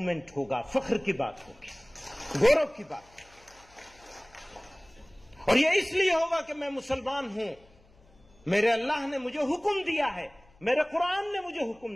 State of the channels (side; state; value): left; noise; hum, 29 dB below the sound